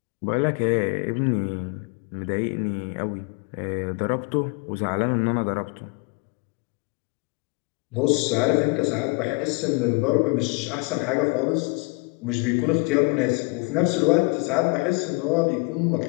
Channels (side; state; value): right; quieter; 30.1 dB